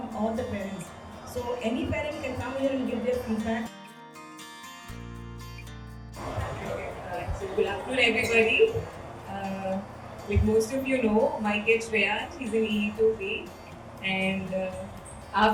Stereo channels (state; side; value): identical; both; correlation 1.00